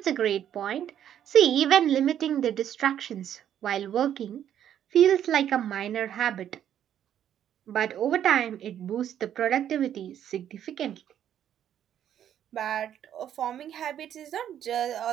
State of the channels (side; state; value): left; quieter; 10.2 dB